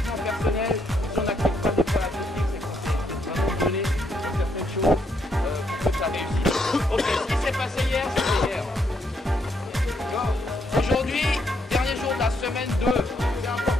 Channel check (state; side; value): normal; both; correlation 0.75